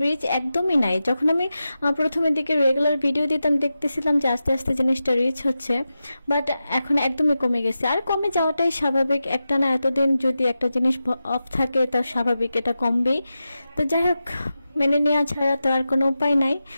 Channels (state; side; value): inverted; both; correlation -0.92